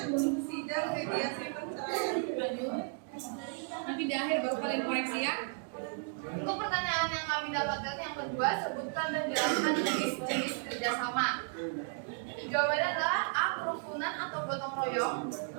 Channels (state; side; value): silent; left; 55 dB below the other